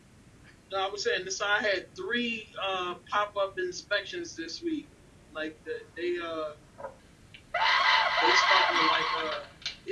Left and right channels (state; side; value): identical; both; correlation 1.00